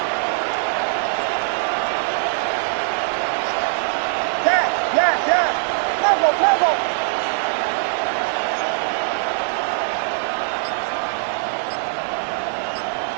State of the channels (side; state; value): left; silent; digital silence